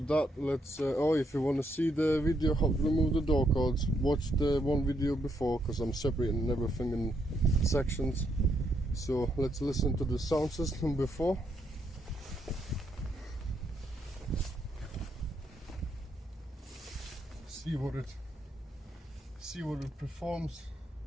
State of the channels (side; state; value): both; normal; correlation 0.76